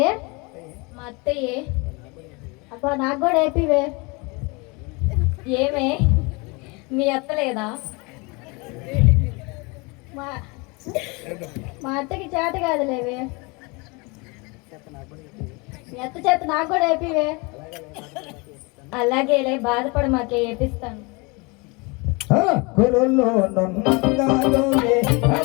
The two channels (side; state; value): right; quieter; 28.2 dB